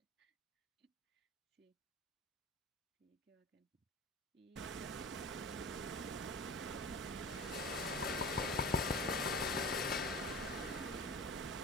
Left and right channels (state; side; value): normal; both; correlation 0.34